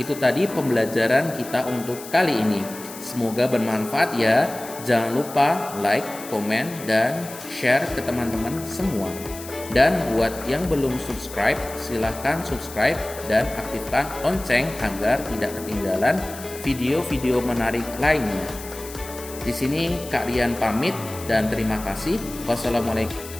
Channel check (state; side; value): noise; left; hiss, 14 dB below the sound